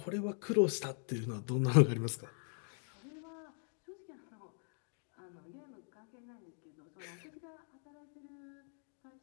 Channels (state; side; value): silent; right; 51 dB below the other